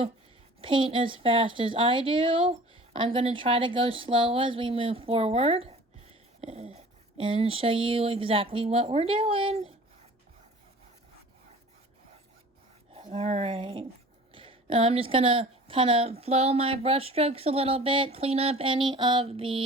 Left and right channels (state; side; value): normal; both; correlation 0.44